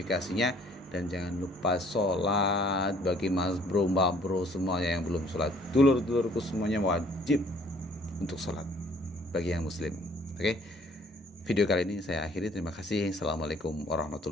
Dan jangan lupa sholat. Bagi mas bro, mbak bro semuanya yang belum sholat, dulur-dulurku semuanya wajib untuk sholat bagi yang muslim. Oke, video kali ini saya akhiri. Terima kasih. Assalamualaikum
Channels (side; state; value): both; normal; correlation 0.59